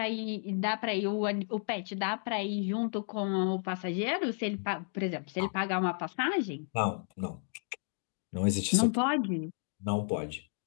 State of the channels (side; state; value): right; silent; 56 dB below the other